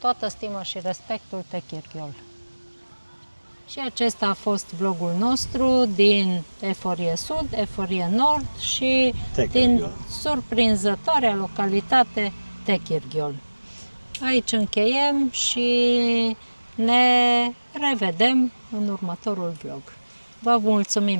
stima și respectul Techirghiol. Și acesta a fost vlogul nostru din Eforie Sud, Eforie Nord și Techirghiol. din surprinzătoarea localitate Techirghiol. Aici încheiem și ne revedem în următorul vlog. Vă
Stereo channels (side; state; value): both; inverted; correlation -1.00